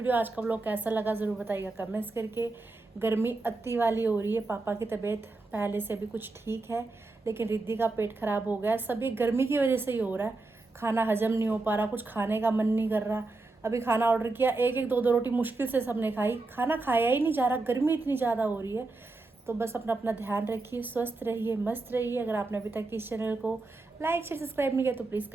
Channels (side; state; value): left; quieter; 3.3 dB